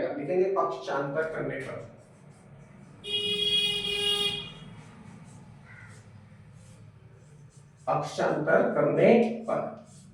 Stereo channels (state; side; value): identical; both; correlation 1.00